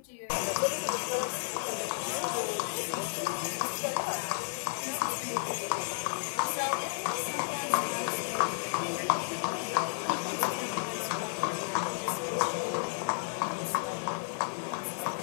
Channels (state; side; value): silent; right; 56 dB below the other